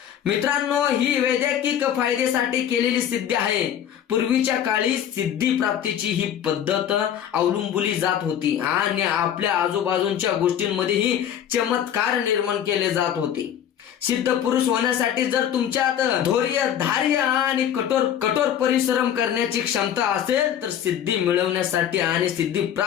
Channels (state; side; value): quieter; right; 9.8 dB